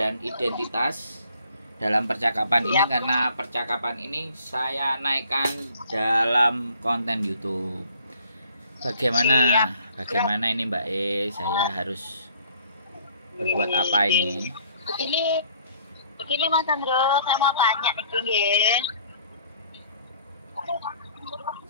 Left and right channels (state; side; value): inverted; both; correlation -0.58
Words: identitas dalam percakapan ini Siap. karena percakapan ini saya naikkan dalam konten YouTube. Bagaimana ini Mbak Saya harus berbuat apa ini? Begini Mas Andro, saya mau tanya nih, nggih.